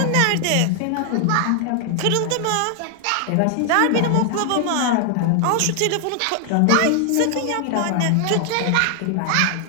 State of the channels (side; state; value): both; different; correlation 0.00